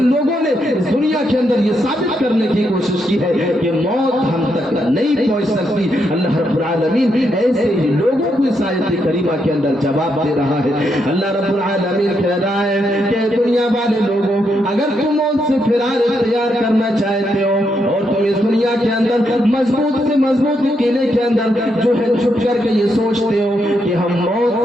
لوگوں نے اس دنیا کے اندر یہ ثابت کرنے کی کوشش کی ہے کہ موت ہم تک نہیں پہنچ سکتی۔ اللہ رب العالمین ایسے ہی لوگوں کو اس آیت کریمہ کے اندر جواب دے رہا ہے۔ اللہ رب العالمین کہہ رہا ہے کہ دنیا والے لوگوں اگر تم موت سے فرار اختیار کرنا چاہتے ہو اور تم اس دنیا کے اندر مضبوط سے مضبوط قلعے کے اندر جو ہے چھپ کر کے یہ سوچتے ہو کہ ہم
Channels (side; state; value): both; normal; correlation 0.80